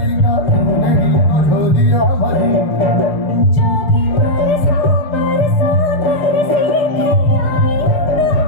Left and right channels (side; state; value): right; late; 6.7 ms